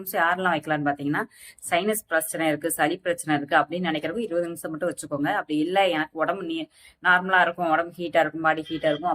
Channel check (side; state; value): both; identical; correlation 1.00